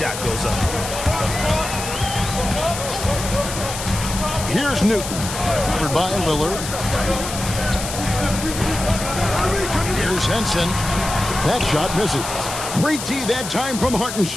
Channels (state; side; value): noise; left; hiss, 7 dB below the sound